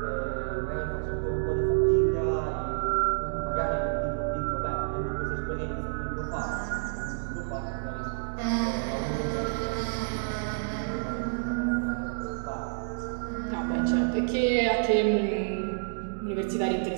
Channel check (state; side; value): silent; left; digital silence